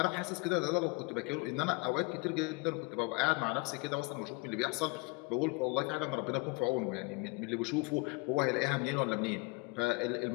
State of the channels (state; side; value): quieter; right; 27.7 dB